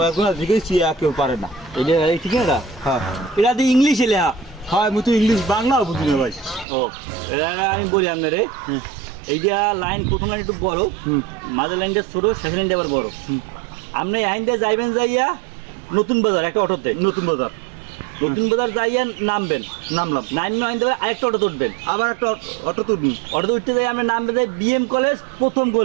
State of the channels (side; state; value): left; drops out; at 6.7 s